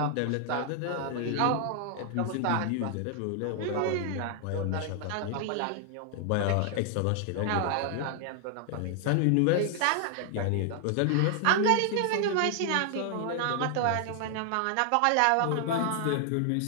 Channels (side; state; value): both; different; correlation 0.00